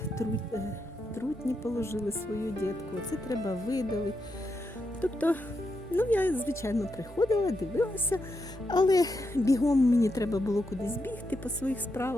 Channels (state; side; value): normal; both; correlation 0.83